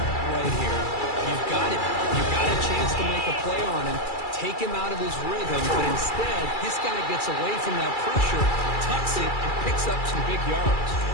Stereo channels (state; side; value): late; right; 2.3 ms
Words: right here. You've got it. You've got a chance to make a play on him. take him out of his rhythm, but instead, this guy gets away from that pressure, tucks it, and picks up some big yards.